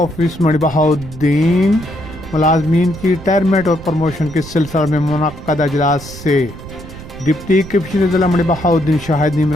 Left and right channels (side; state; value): right; noise; rumble, 14 dB below the sound